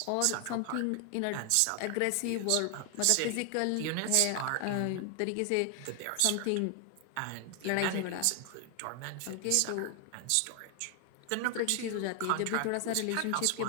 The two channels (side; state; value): both; different; correlation 0.00